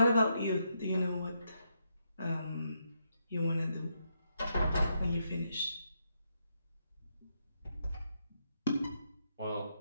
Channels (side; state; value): both; inverted; correlation -0.79